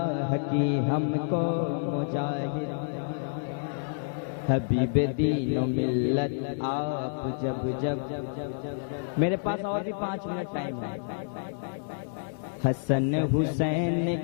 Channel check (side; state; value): right; silent; digital silence